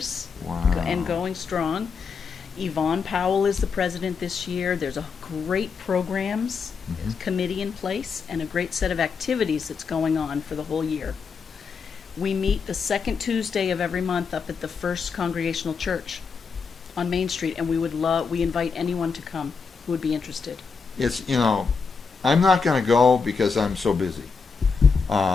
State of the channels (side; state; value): right; quieter; 5.3 dB